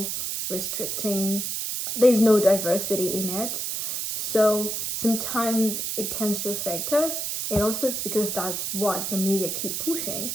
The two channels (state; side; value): noise; right; hiss, 2 dB below the sound